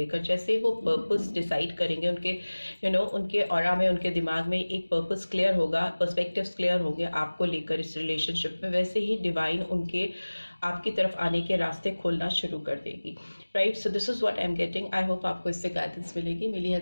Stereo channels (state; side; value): inverted; both; correlation -1.00